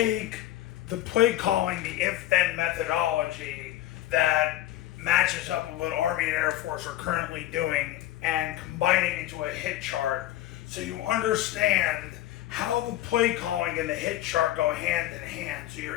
the Playcalling, the if-then methodology that matches up with what Army and Air Force are currently doing and combine it into a hit chart so you understand how the Playcalling and the hit chart go hand in hand so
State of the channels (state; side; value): quieter; right; 14.4 dB